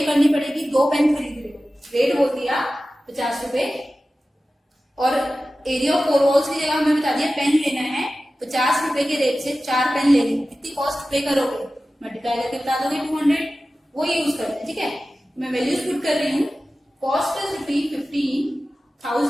करनी पड़ेगी 2 पेन खरीद रहे हो, रेट बोल दिया 50 रुपए और एरिया ऑफ 4 वॉल्स की जगह हमें बता दिया पेन लेना है 50 रुपए के रेट से 4 पेन लेने, कितनी कॉस्ट पे करोगे, मल्टीप्लाई करके बता दोगे 200, वो यूज करते हैं, ठीक है। मैं वैल्यूज पुट कर रही हूँ, cost is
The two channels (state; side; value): normal; both; correlation 0.95